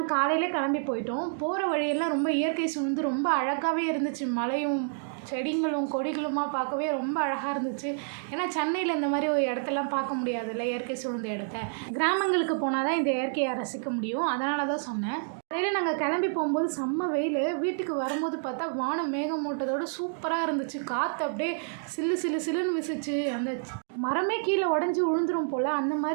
காலையில் கிளம்பி போயிட்டோம். போகிற வழியெல்லாம் ரொம்ப இயற்கை சூழ்ந்து ரொம்ப அழகாகவே இருந்துச்சு. மலையும் செடிங்களும் கொடிகளுமா பார்க்கவே ரொம்ப அழகாக இருந்துச்சு. ஏன்னா சென்னையில் இந்த மாதிரி ஒரு இடத்தெல்லாம் பார்க்க முடியாதுல்ல, இயற்கை சூழ்ந்த இடத்த. கிராமங்களுக்கு போனால் தான் இந்த இயற்கையை ரசிக்க முடியும். அதனால தான் சொன்னேன். காலையில் நாங்கள் கிளம்பி போகும்போது செம்ம வெயில். வீட்டுக்கு வரும்போது பார்த்தா வானம் மேகமூட்டத்தோடு சூப்பராக இருந்துச்சு. காற்று அப்படியே சில்லு சில்லு சில்லுன்னு வீசிச்சு. அந்த மரமே கீழே உடஞ்சி விழுந்துரும் போல் அந்த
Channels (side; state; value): left; silent; digital silence